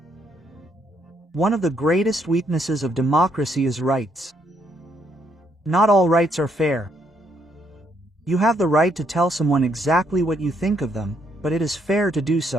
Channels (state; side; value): normal; both; correlation 0.72